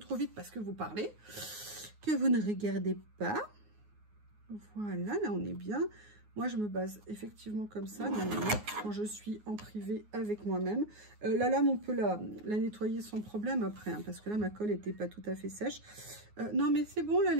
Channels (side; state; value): left; late; 9.5 ms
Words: vite parce que vous parlez, que vous ne regardez pas. Voilà, là on est bien. Moi je me base effectivement comme ça, quand je suis en privé avec moi-même. La lame, on peut la nettoyer sans problème après, hein, parce que là ma colle n'était pas tout à fait sèche. Non mais c'est bon là